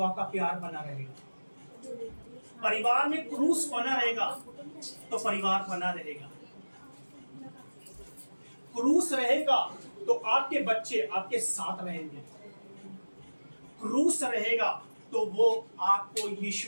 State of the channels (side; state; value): both; inverted; correlation -1.00